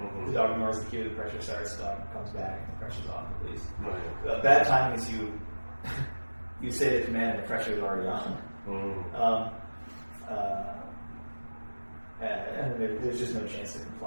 The dog ignores the cue, the pressure starts, the dog comes back, the pressure's off, at least. Bad timing is you say the command and the pressure is already on. And there's just no chance to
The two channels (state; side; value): inverted; both; correlation -1.00